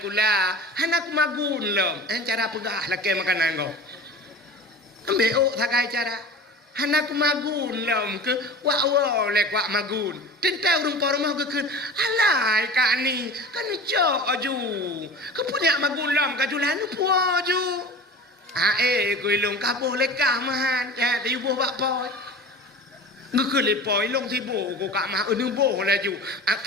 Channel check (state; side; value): normal; both; correlation 0.37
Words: kula. Hanak magun lom. Cara pegah lakai makanan kau. Ambil ok thakai cara. Hanak magun lom ke wa le kwa magun. Tentang rumah rumah ke kun. Alai kak ni kan jok aju. Ke punya magun lom ka julan puo ju. Kui long ka boleh kah mahan. Ya di buh bak poi. Ngư le poi long thi bồ của cả mà nu bồ là ju.